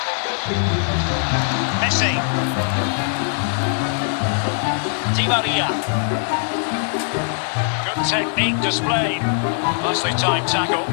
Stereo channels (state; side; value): silent; right; 65 dB below the other